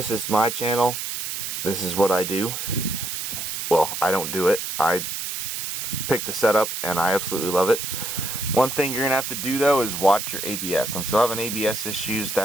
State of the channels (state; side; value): noise; right; hiss, 4 dB below the sound